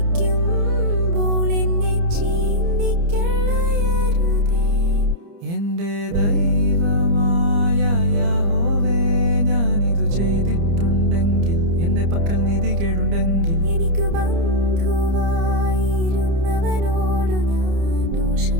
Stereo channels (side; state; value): left; late; 30 ms